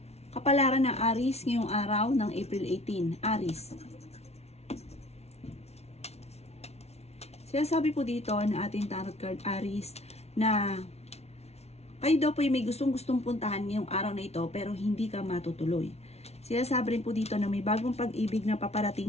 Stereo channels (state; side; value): late; right; 0.31 ms